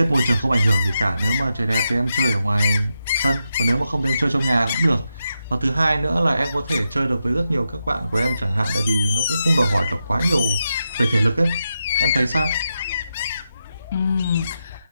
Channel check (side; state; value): both; inverted; correlation -0.87